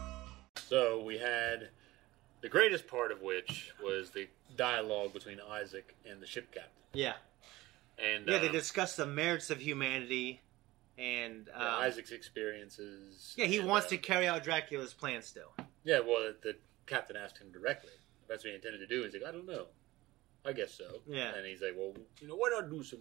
So, we had the greatest part of which was the dialogue between Isaac and the ship captain. Yeah. And they discussed the merits of humanity and... Isaac's experiences. Yeah, he wants to carry out Dracula's plan still. Yeah, well, the captain asked him directly. That's what he intended to do. He's like, I don't know. I guess so. Yeah. And he's like, well, why not do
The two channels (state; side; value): quieter; left; 18.7 dB